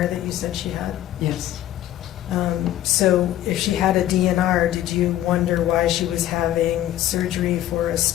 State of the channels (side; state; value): right; quieter; 13.1 dB